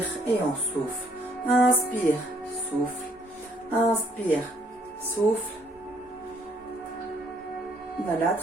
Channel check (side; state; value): both; normal; correlation 0.65